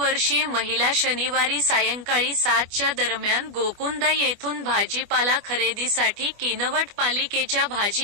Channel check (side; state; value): left; late; 24 ms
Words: महिला शनिवारी सायंकाळी 7च्या दरम्यान गोकुंदा येथून भाजीपाला खरेदीसाठी किनवट पालिकेच्या